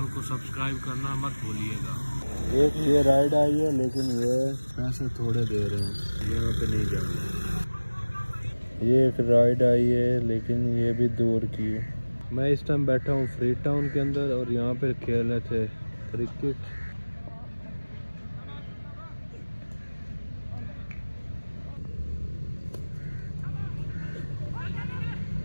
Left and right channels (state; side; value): inverted; both; correlation -1.00